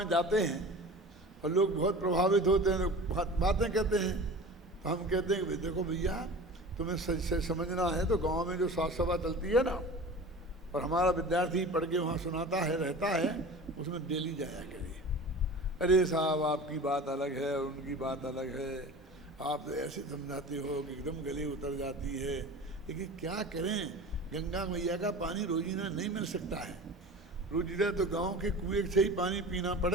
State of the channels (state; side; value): normal; both; correlation 0.37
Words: जाते हैं और लोग बहुत प्रभावित होते हैं, बातें कहते हैं, तो हम कहते हैं कि देखो भैया, तुम्हें समझना है तो गांव में जो साथ सभा चलती है ना, और हमारा विद्यार्थी पढ़ के वहाँ सुनाता है, रहता है, उसमें डेली जाया करिए। अरे साहब, आपकी बात अलग है और उनकी बात अलग है, आप तो ऐसे समझाते हो कि एकदम गले उतर जाती है। लेकिन क्या करें, गंगा मैया का पानी रोजीना नहीं मिल सकता है। रोजीना तो गांव के कुएं से ही पानी पीना